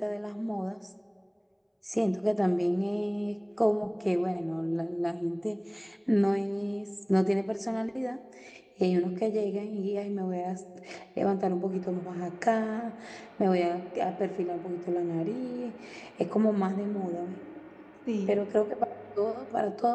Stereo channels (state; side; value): identical; both; correlation 1.00